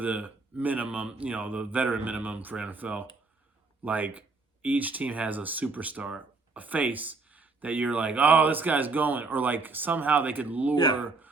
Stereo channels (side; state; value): left; quieter; 3.9 dB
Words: minimum, the veteran minimum for NFL. Like each team has a superstar, a face that you're like, oh, this guy's going, or like somehow they could lure